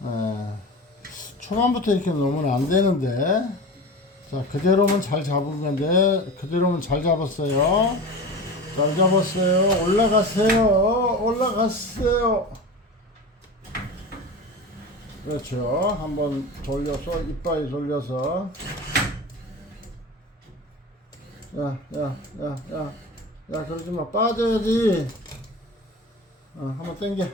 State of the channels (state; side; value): normal; both; correlation 0.31